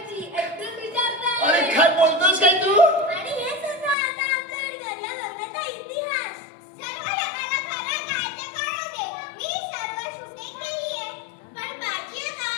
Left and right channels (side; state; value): right; drops out; at 4.0 s